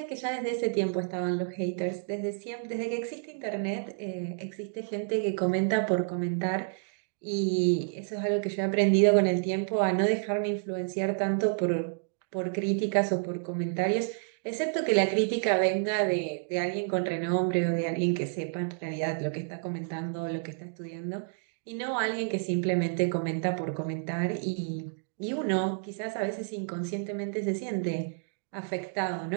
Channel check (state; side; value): silent; left; digital silence